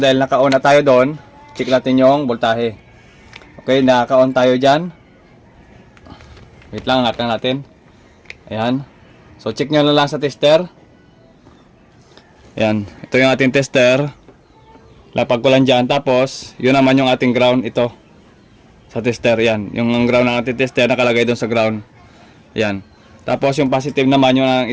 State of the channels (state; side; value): identical; both; correlation 1.00